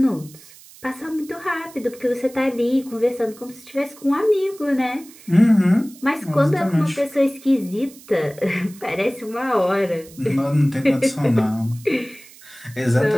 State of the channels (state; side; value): noise; right; hiss, 22 dB below the sound